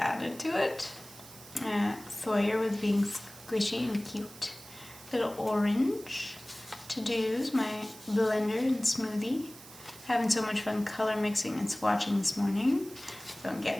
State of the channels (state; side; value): noise; right; hiss, 18 dB below the sound